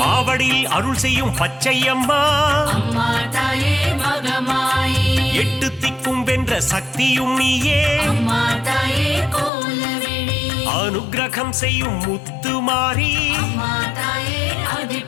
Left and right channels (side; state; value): right; drops out; at 9.5 s